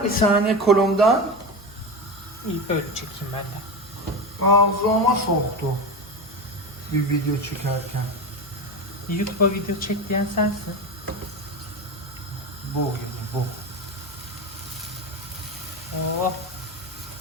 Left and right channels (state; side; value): noise; left; hum, 23 dB below the sound